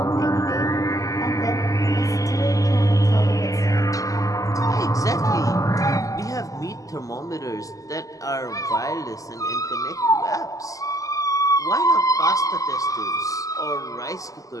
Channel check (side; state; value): right; late; 0.17 ms